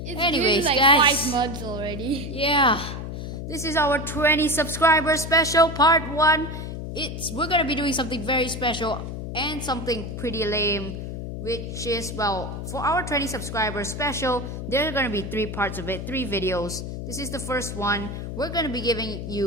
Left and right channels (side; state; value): left; noise; hum, 6 dB below the sound